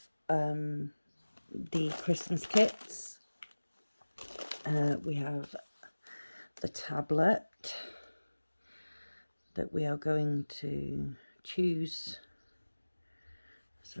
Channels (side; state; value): both; inverted; correlation -1.00